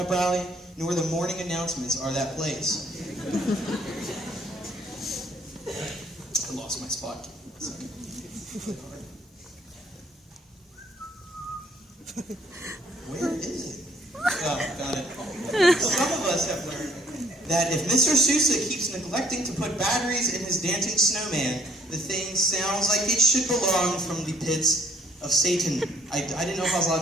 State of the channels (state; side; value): normal; both; correlation 0.62